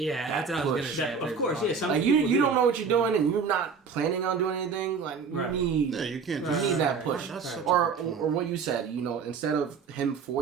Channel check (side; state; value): left; quieter; 5.6 dB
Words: that's what I was gonna say. Of course, yeah. Some like people you don't know what you're doing, and you're not planning on doing anything. Like you need, you can't. You need that push, or what you said. You know, instead of him